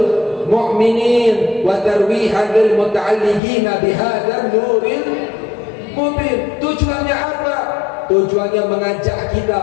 mu'minin wa tarwihan lil muta'alliqina bihadzal nuril mubin. Tujuannya apa? Tujuannya mengajak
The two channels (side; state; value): right; drops out; at 3.4 s